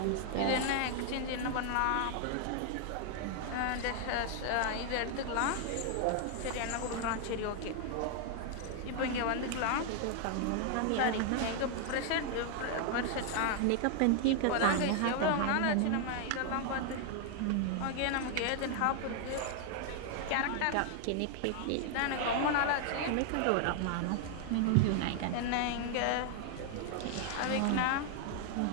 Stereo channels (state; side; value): different; both; correlation 0.00